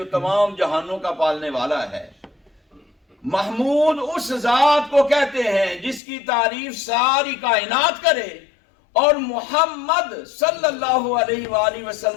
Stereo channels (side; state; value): right; drops out; at 6.0 s